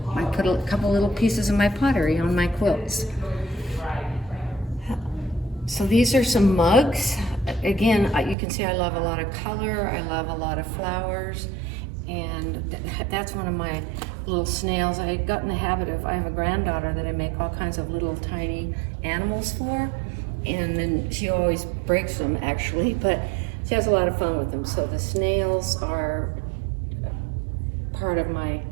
I put a couple little pieces of my pottery on my quilts. So these are some mugs. Again, you can see I love a lot of color, I love a lot of flowers, and that's one of my little snails. I got in the habit of, I have a granddaughter that I make all kinds of little tiny animals for, and then she always breaks them actually, but she has a lot of fun with them. So the snails are part of my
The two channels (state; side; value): drops out; left; at 8.3 s